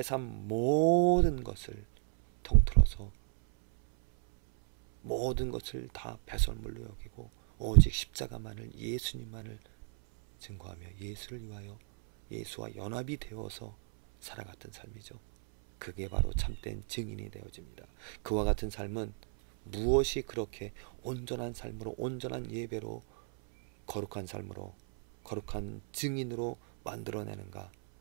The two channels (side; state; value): left; silent; 55 dB below the other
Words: 삶 모든 것을 통틀어서 모든 것을 다 배설물로 여기고 오직 십자가만을, 예수님만을 증거하며 예수를 위하여 예수와 연합이 되어서 살아갔던 삶이죠. 그게 바로 참된 증인이 되어집니다. 그와 같은 삶은 무엇이 그렇게 온전한 삶으로, 온전한 예배로, 거룩한 삶으로, 거룩한 증인으로 만들어내는가?